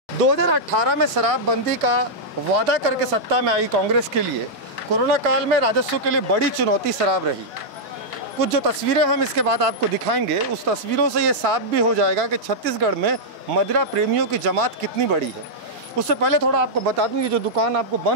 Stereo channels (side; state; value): both; normal; correlation -0.07